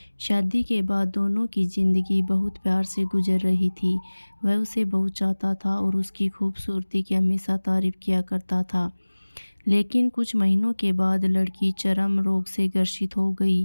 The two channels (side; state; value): both; inverted; correlation -1.00